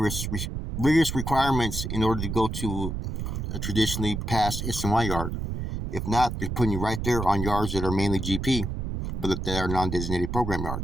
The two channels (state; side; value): noise; right; rumble, 4 dB below the sound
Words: requirements in order to go to a traditionally passed SNY yard. If not, they're putting you right there on yards that are mainly GP, but that are non-designated program